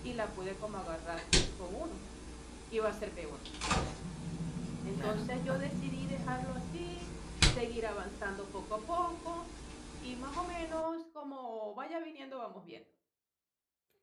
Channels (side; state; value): both; identical; correlation 1.00